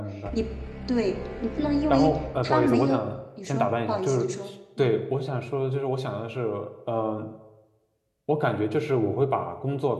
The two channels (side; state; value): both; identical; correlation 1.00